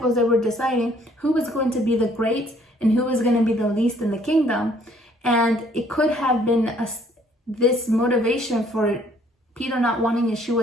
they were deciding who was going to be the great and who was going to be the least in the kingdom. And it could have been this motivation for Peter not wanting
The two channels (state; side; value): normal; both; correlation 0.62